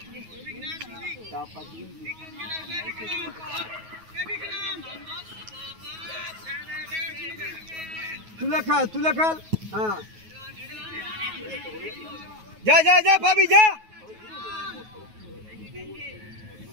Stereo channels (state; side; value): late; left; 9.4 ms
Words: তুলে খেল, তুলে খেল। হ্যাঁ যা যা যা, ভাবি যা।